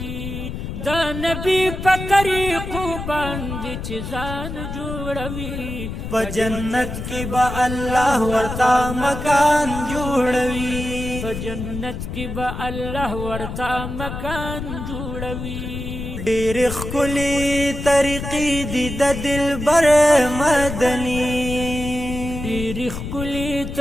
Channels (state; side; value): noise; left; rumble, 7 dB below the sound